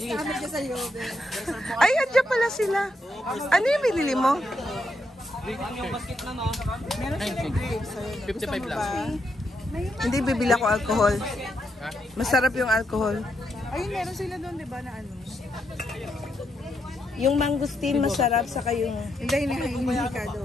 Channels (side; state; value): both; normal; correlation 0.80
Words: Ay, andyan pala sila. Ano yung binili mo? Meron 55 lang. Hindi, bibili ako alcohol. Masarap yung alcohol. Ayun, meron sila doon, di ba, na ano? Yung mangustin masarap, saka yung... Hindi, hihikado